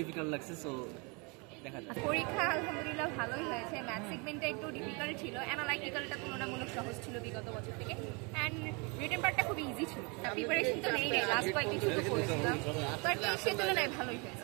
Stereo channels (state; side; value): quieter; left; 31.1 dB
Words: ডিফিকাল্ট লাগছে, সো দেখা যাক। পরীক্ষা আলহামদুলিল্লাহ ভালোই হয়েছে। ম্যাথ সেগমেন্টটা একটু ডিফিকাল্ট ছিল, অ্যানালাইটিক্যালটা তুলনামূলক সহজ ছিল বিগত বছর থেকে, অ্যান্ড রিটেন পার্টটা খুব ইজি ছিল। প্রিপারেশন তো নেই লাস্ট কয়েকদিন শুরু করেছিলাম, বাট সে তুলনায় ভালোই